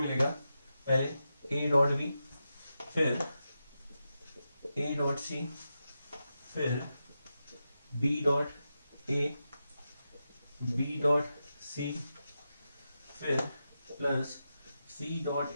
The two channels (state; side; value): inverted; both; correlation -0.89